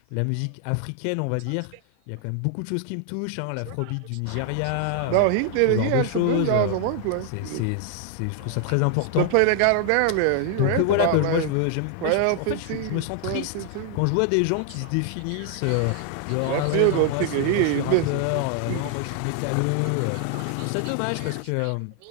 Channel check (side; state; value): both; different; correlation 0.00